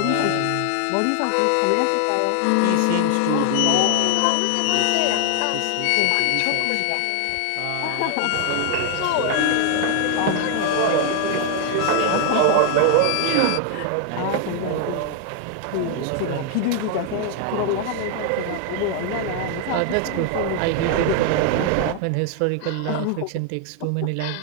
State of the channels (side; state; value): both; different; correlation 0.00